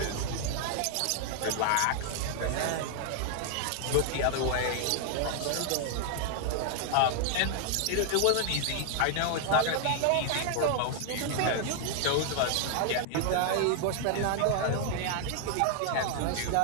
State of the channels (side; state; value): both; different; correlation 0.00